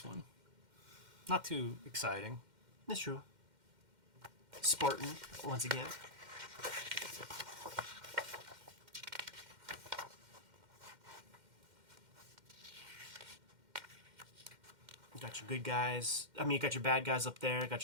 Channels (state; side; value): late; left; 2.1 ms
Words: one. Not too exciting. That's true. Spartan, once again. You got your good guys. I mean, you got your bad guys up there.